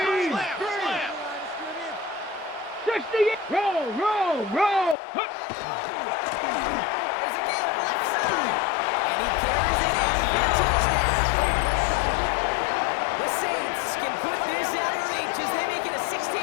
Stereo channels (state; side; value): drops out; right; at 5.0 s